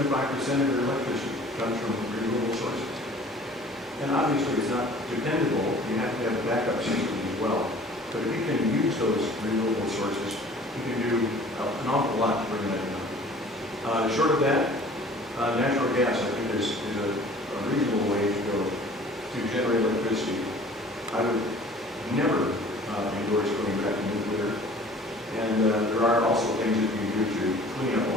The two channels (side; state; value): both; normal; correlation 0.49